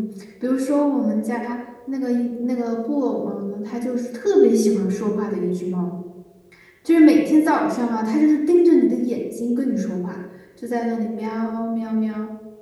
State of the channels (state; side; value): identical; both; correlation 1.00